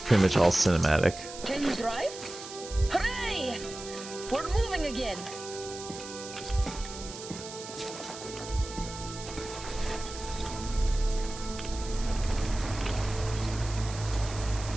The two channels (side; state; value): right; noise; hiss, 12 dB below the sound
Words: much all cinematic. Can you drive? Hooray! We're moving again.